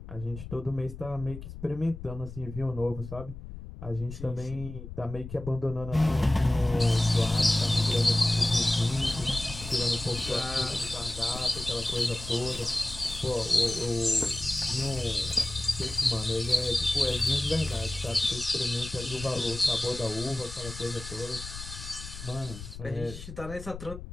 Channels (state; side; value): noise; left; rumble, 12 dB below the sound